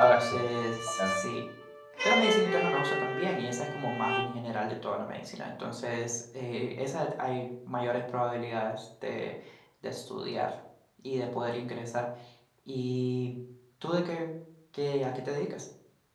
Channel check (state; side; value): identical; both; correlation 1.00